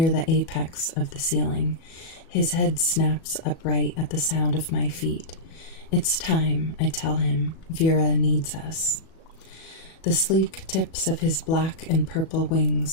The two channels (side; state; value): right; late; 37 ms